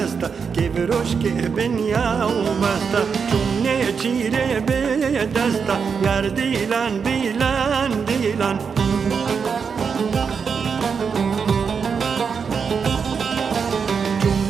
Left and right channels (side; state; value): left; quieter; 6.0 dB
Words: که بروش که بنیا و بسته چونه چیره به دسته یار دیلان دیلان دیلان